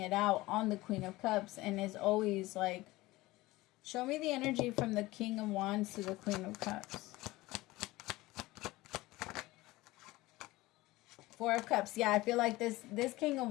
it out on the Queen of Cups, and is always like, show me the energy from the King of Wands to the Queen of Cups. Four of Cups. Yeah, I feel like this King of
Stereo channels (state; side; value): quieter; right; 19.3 dB